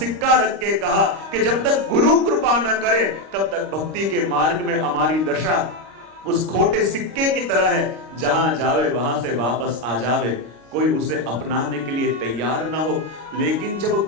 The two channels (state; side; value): late; left; 26 ms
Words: रख के कहा कि जब तक गुरु कृपा न करे तब तक भक्ति के मार्ग में हमारी दशा उस खोटे सिक्के की तरह है, जहां जावे वहां से वापस आ जावे, कोई उसे अपनाने के लिए तैयार ना हो। लेकिन जब